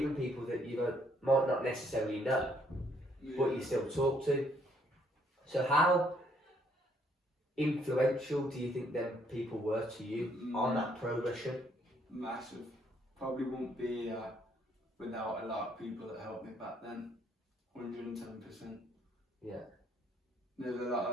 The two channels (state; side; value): normal; both; correlation 0.68